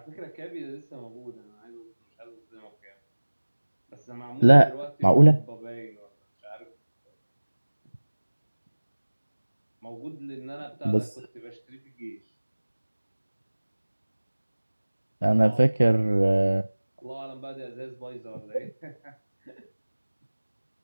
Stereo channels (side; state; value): both; inverted; correlation -1.00